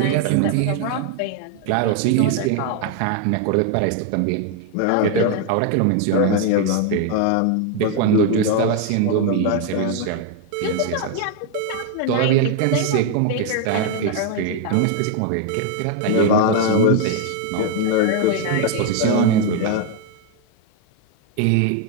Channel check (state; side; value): different; both; correlation 0.01